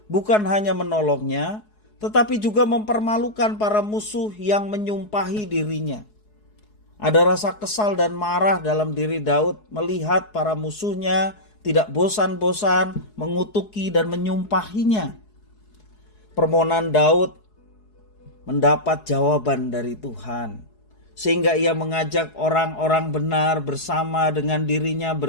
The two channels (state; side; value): late; right; 4.7 ms